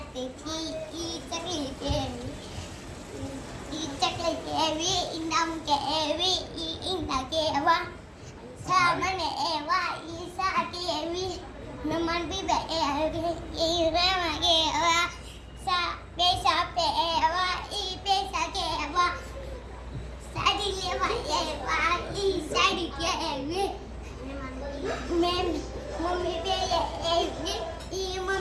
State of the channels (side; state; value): both; identical; correlation 1.00